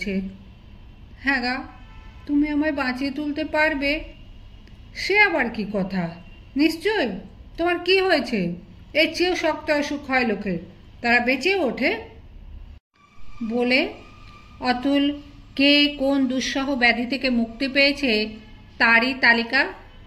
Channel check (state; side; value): identical; both; correlation 1.00